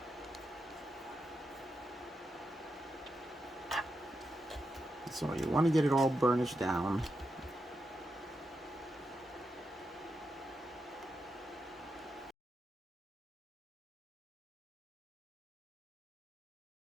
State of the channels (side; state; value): both; normal; correlation 0.86